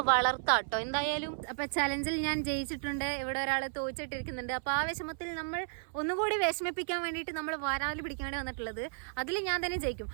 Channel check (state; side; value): silent; left; 55 dB below the other